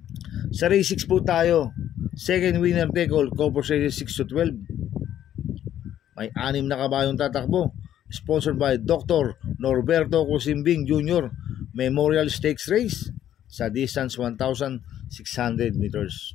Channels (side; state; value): right; quieter; 11.1 dB